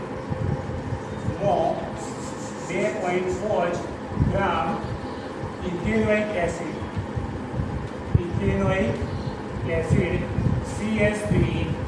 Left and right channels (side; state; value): both; identical; correlation 1.00